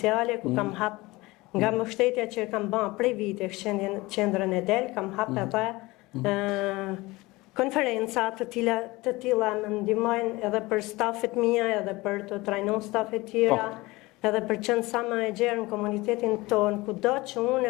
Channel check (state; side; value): quieter; right; 21.3 dB